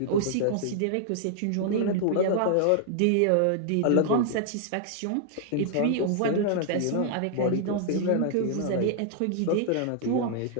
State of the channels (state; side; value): different; both; correlation -0.01